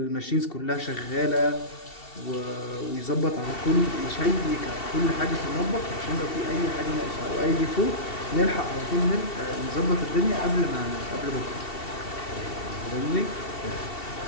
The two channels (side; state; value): right; late; 2.7 ms